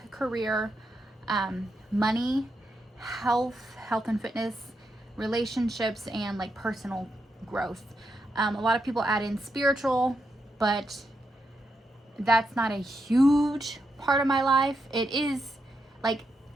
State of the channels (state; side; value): normal; both; correlation 0.83